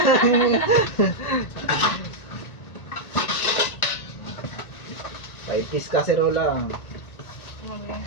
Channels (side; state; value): right; late; 1.8 ms